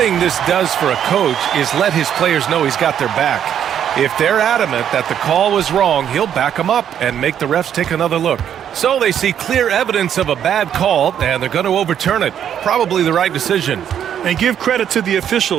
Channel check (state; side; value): quieter; left; 9.4 dB